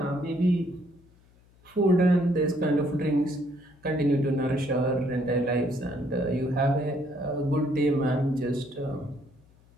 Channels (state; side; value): noise; left; hum, 30 dB below the sound